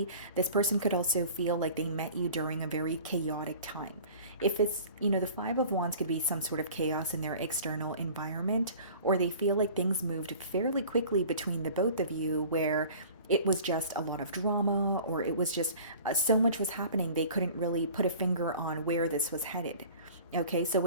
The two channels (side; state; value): both; inverted; correlation -0.44